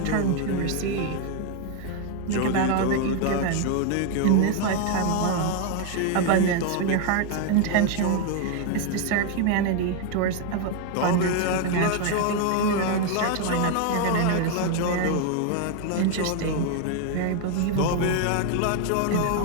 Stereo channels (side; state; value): both; different; correlation 0.01